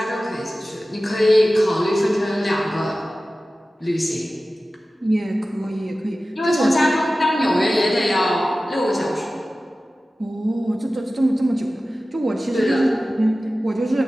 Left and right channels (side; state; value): both; normal; correlation 0.96